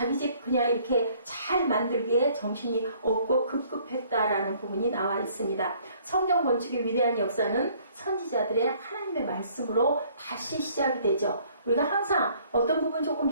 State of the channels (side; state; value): both; inverted; correlation -0.60